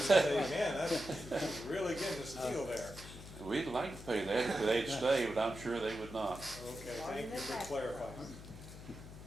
man, that's really getting a steal there. We'd like to pay that if they'd stay, but I'm sure they would not. Okay, thank you for clarifying.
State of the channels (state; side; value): noise; left; hum, 14 dB below the sound